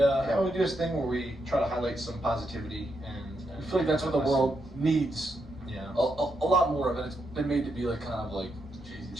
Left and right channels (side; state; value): both; normal; correlation 0.81